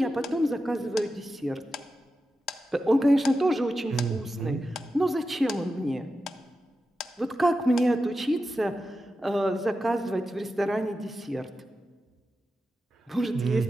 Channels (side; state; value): both; normal; correlation 0.91